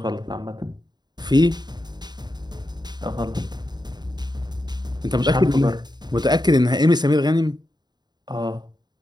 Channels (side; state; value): left; late; 0.20 ms